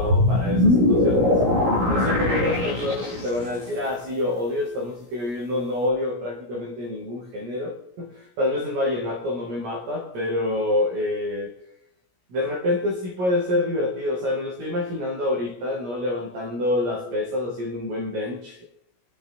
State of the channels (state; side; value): late; left; 17 ms